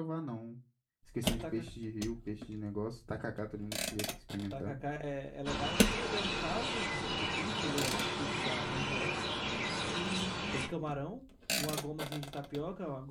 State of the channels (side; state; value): both; identical; correlation 1.00